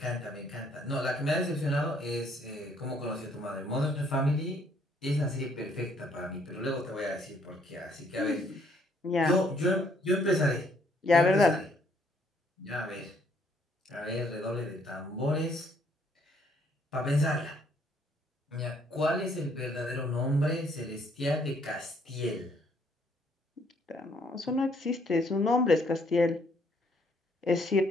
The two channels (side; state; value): both; normal; correlation 0.66